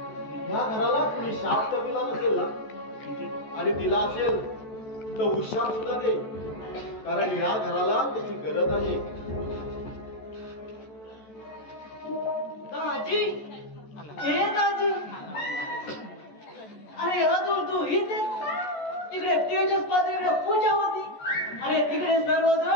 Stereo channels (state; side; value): late; right; 14 ms